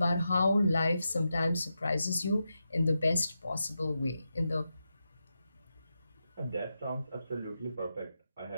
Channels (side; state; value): both; inverted; correlation -0.88